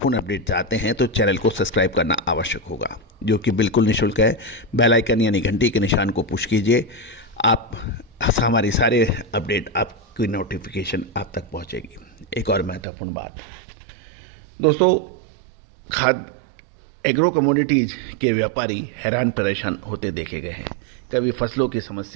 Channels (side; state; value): left; drops out; at 12.8 s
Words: अपडेट चाहते हैं तो चैनल को सब्सक्राइब करना आवश्यक होगा, जो कि बिल्कुल निःशुल्क है। बेल आइकन यानी घंटी के निशान को पुश कीजिए, आप हमारी सारे अपडेट, आपकी नोटिफिकेशन आप तक पहुँचेगी। एक और महत्वपूर्ण बात दोस्तों, खाद्य एग्रो कमोडिटीज़ के व्यापारी हैरान परेशान होते देखे गए हैं। कभी फसलों की